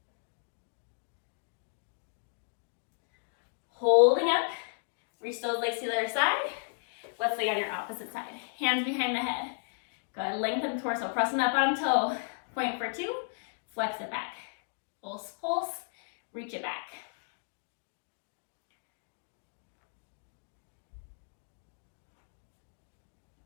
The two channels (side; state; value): right; silent; digital silence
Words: Holding up, reach those legs to the other side. Let's lay on your opposite side. Hands behind the head. Go ahead, lengthen the torso, pressing that bottom toe. Point for 2, flex it back. Pulse, pulse, reach it back.